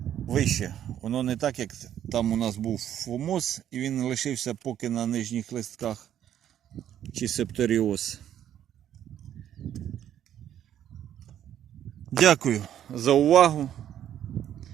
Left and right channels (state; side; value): quieter; left; 10.6 dB